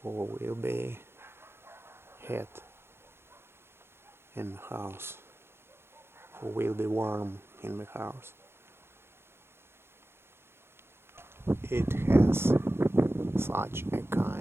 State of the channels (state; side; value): late; left; 0.12 ms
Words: for will be heat in the house, for will be warm in the house. It has such a